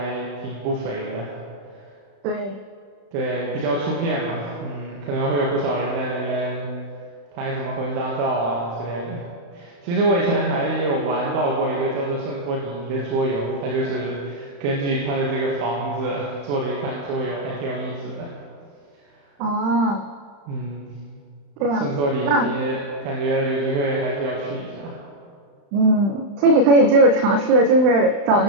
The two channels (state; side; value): late; left; 35 ms